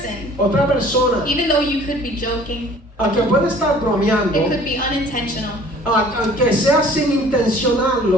otra persona, even though you could be joking, aunque puede estar bromeando, it could be unintentional. aunque sea sin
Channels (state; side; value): normal; both; correlation 0.51